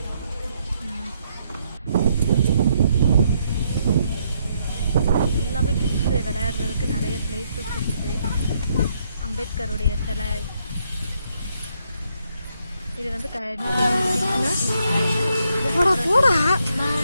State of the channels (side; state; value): both; inverted; correlation -0.74